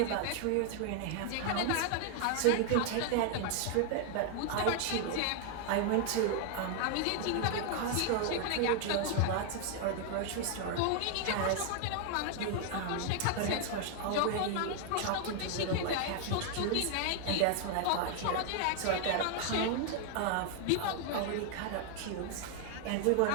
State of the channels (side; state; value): both; different; correlation 0.00